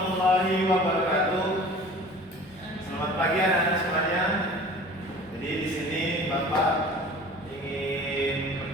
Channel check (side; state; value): both; normal; correlation 0.43